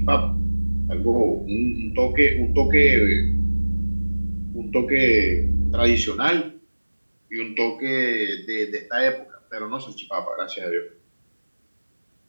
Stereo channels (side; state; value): both; inverted; correlation -1.00